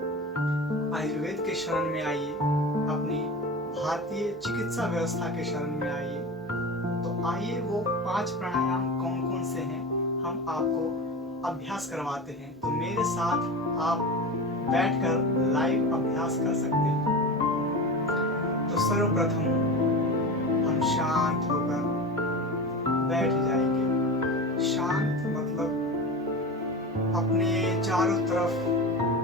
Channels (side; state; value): both; normal; correlation 0.28